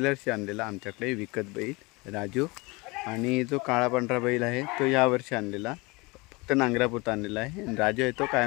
वर्षी आणलेला आमच्याकडे विकत बैल राजू. आणि जो काळा पांढरा बैल आहे तो यावर्षी आणलेला, फक्त नांगरापुरता आणलेला आहे. आणि राजू आहे तो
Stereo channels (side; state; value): right; quieter; 25.4 dB